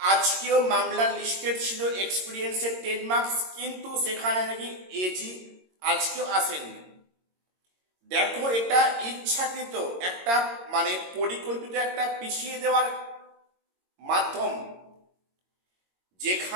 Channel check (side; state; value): left; late; 22 ms